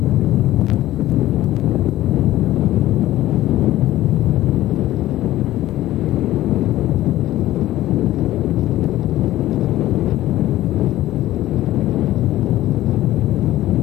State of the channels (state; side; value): quieter; right; 14.9 dB